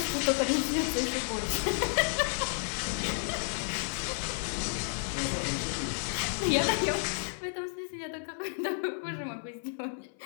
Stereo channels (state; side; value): silent; right; 57 dB below the other